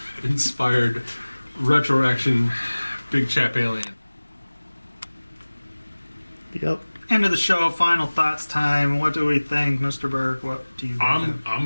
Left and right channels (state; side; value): inverted; both; correlation -1.00